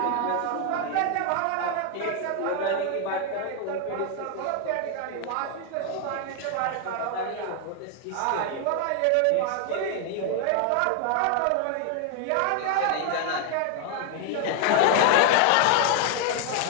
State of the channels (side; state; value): both; different; correlation 0.00